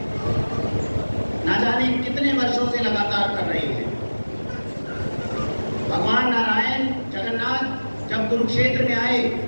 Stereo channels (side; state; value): both; inverted; correlation -1.00